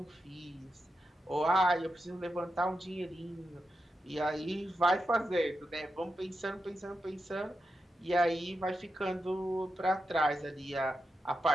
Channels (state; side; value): normal; both; correlation 0.88